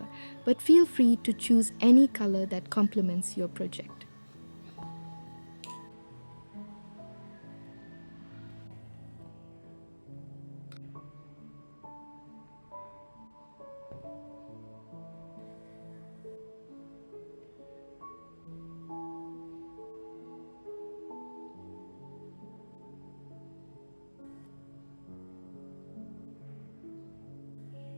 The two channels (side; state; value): both; inverted; correlation -1.00